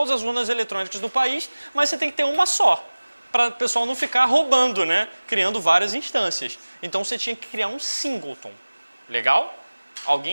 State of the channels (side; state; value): both; inverted; correlation -1.00